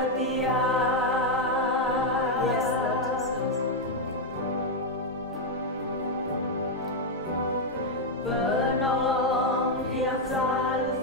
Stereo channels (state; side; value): normal; both; correlation 0.01